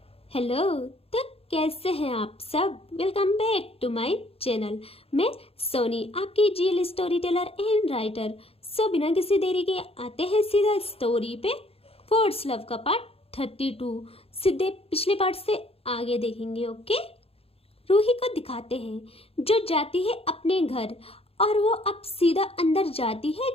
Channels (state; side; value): late; right; 0.28 ms